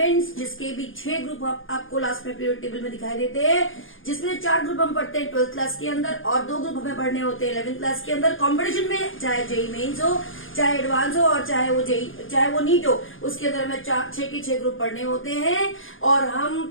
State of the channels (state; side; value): late; right; 0.58 ms